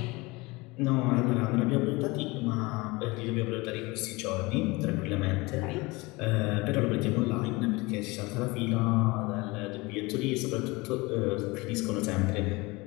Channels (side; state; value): right; quieter; 23.8 dB